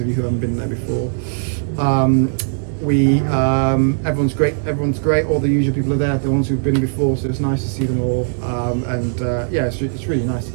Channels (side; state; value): left; silent; 67 dB below the other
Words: of you who haven't been there before. Everyone's great. Everyone's great. All the usual people are there. The ones who've been before, so it's nice to see them all. Yeah, it's really nice to